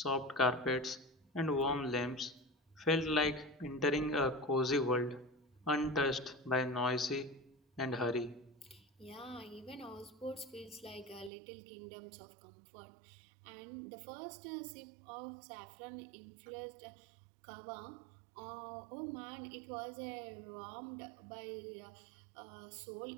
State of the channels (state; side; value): drops out; left; at 11.3 s